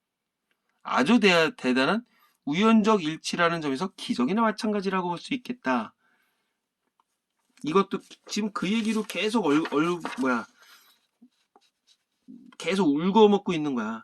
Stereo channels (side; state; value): both; identical; correlation 1.00